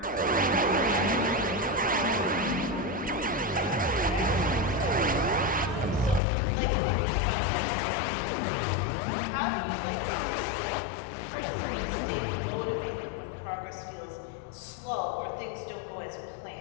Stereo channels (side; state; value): right; drops out; at 6.2 s